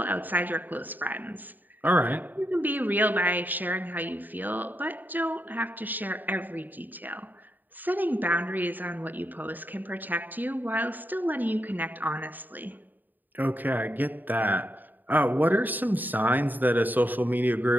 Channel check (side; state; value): left; late; 0.087 ms